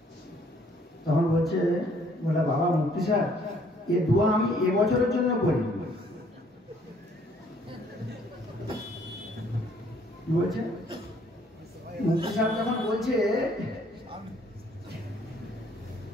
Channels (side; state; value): both; normal; correlation 0.62